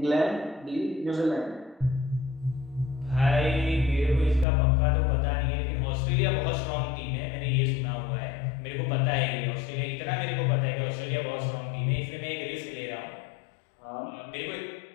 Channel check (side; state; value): right; drops out; at 4.5 s